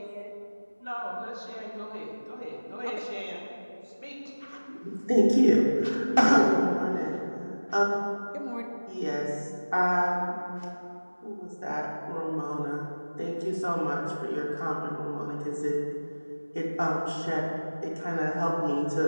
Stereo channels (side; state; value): both; inverted; correlation -1.00